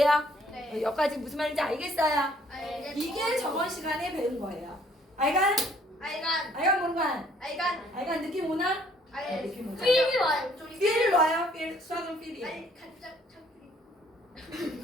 네. 여기까지 무슨 말인지 알겠어요? 알겠어요. 이게 저번 시간에 배운 거예요. 알간? 알간. 알간 뭔간? 알간. 알간 느낌 오나? 알. 느낌 오나? 필이 와요. 필 와요? 필 수학은 필이. 아니 간장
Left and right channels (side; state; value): both; normal; correlation 0.62